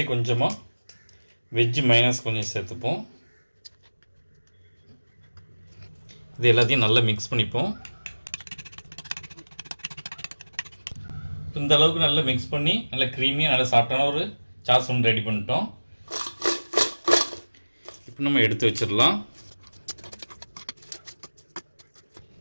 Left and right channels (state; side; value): inverted; both; correlation -1.00